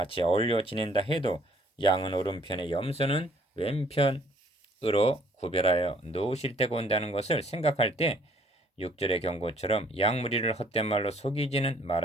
어울려 지낸다 해도 양은 오른편에 염소는 왼편 빛으로 구별하여 놓으실 때가 온다는 것을 생각할 때 6절의 경고처럼 약무리를 헛된 말로 속이지는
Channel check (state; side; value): normal; both; correlation 0.61